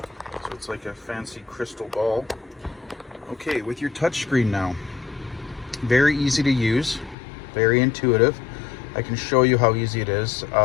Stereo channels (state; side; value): drops out; right; at 7.2 s